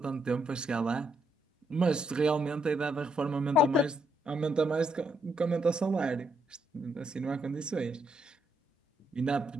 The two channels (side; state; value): both; normal; correlation 0.76